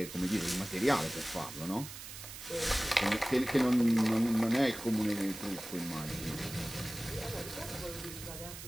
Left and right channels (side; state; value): right; noise; hiss, 12 dB below the sound